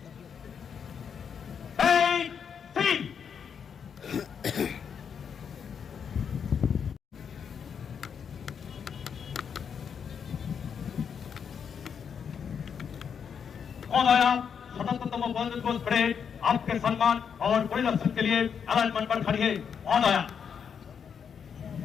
Hey, team. महोदया, स्वतंत्रतम बंधन को परेड आपके सम्मान और परिरक्षण के लिए अलाइनमेंट पर खड़ी है। महोदया,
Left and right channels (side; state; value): right; quieter; 7.1 dB